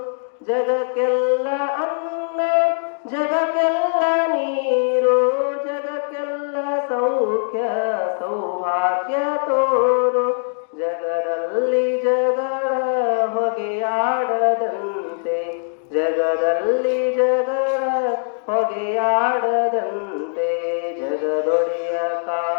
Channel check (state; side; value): silent; right; digital silence